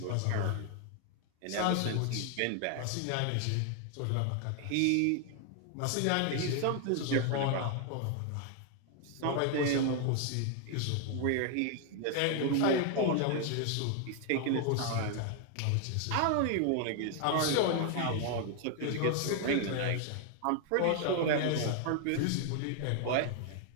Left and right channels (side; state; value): both; different; correlation 0.00